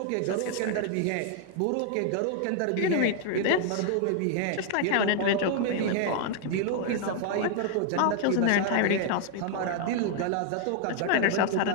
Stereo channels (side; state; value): both; different; correlation 0.00